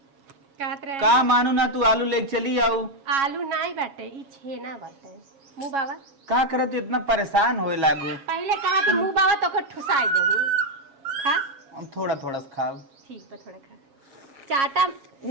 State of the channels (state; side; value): late; left; 7.3 ms